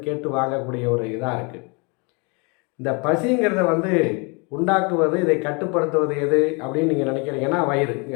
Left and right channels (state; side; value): quieter; right; 31.4 dB